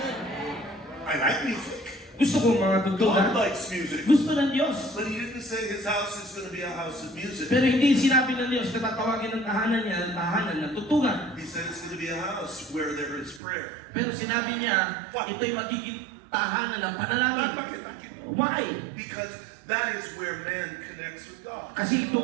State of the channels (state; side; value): drops out; left; at 13.4 s